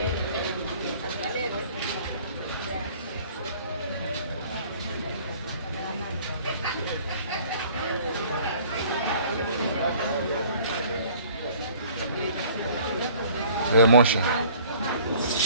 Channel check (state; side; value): inverted; both; correlation -0.53